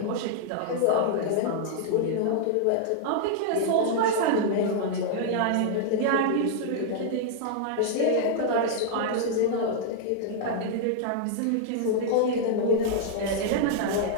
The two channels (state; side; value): different; both; correlation -0.01